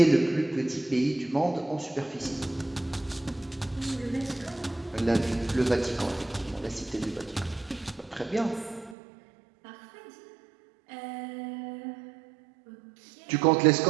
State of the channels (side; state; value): left; drops out; at 9.0 s